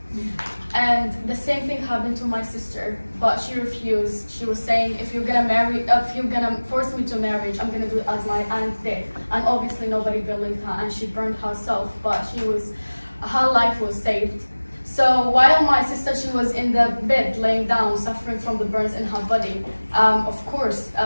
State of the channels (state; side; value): inverted; both; correlation -1.00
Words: And the same thing happened to my sister, but she refused. She was saying, if you're gonna force me to marriage, I'm gonna do it as my aunt did. And obviously nobody believed her, and she burned herself, but her life was saved. So while my sister, she was in the bed laying down, suffering from the burns in her body, of course,